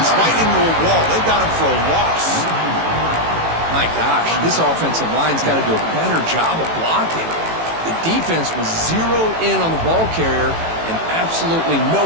right into a wall. They got him for a loss. My gosh, this offensive line's got to do a better job of blocking. The defense was zeroed in on the ball carrier and absolutely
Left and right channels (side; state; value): left; late; 18 ms